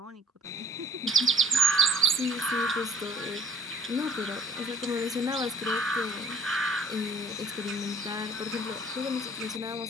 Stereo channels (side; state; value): both; normal; correlation 0.54